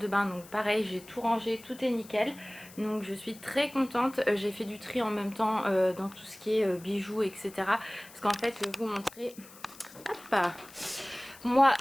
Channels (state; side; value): noise; left; hiss, 20 dB below the sound